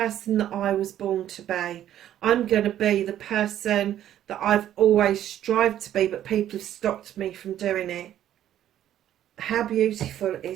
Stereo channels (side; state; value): left; quieter; 11.5 dB